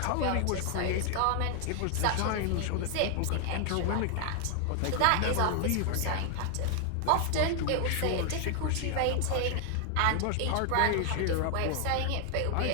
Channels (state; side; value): different; both; correlation 0.00